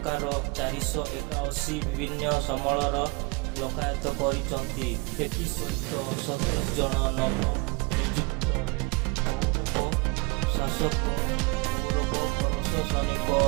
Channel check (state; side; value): quieter; left; 27.2 dB